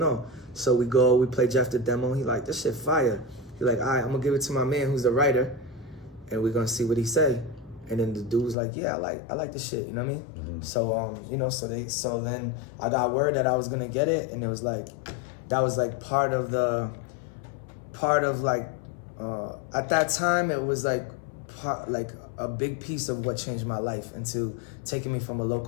So we play Jeff the demo. He like, this shit fire. He like, all right, I'm gonna give it to my man who's the writer, and we're gonna see what he say. And then the dude was like, yeah, I like this shit. You know what I mean? Mm-hmm. So you know, so then I got word that I was gonna get it, and it was like, that was like part of like, at that time it was like a big piece of what changed my life into taking me from a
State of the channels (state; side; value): drops out; right; at 8.6 s